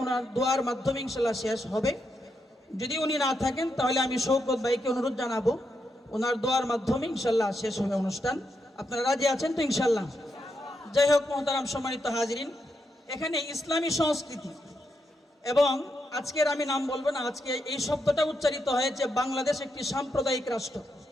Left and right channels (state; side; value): normal; both; correlation 0.83